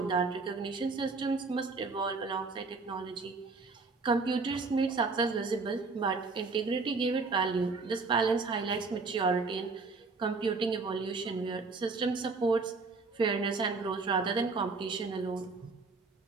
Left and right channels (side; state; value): left; quieter; 4.1 dB